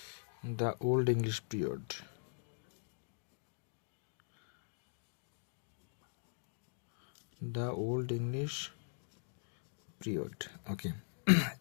the old English period. The old English period, okay.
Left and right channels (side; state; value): right; silent; digital silence